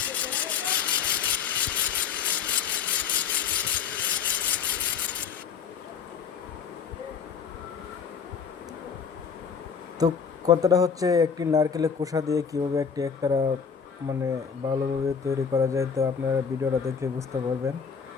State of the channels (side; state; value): right; quieter; 6.6 dB